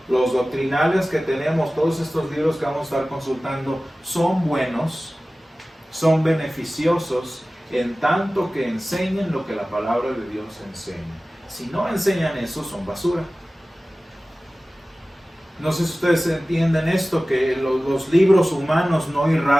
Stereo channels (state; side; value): normal; both; correlation 0.97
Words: los doctrinales que tenemos, todos estos libros que vamos a estar consultando, son buenos, son beneficiosos, en tanto que enseñen lo que la palabra de Dios enseña. Si no enseñan eso, son basura. No sé si ustedes entienden esto, que los libros humanos no